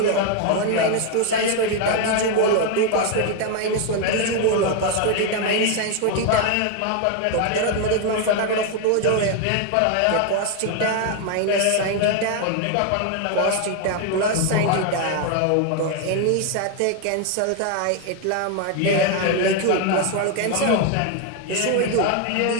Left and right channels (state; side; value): different; both; correlation 0.01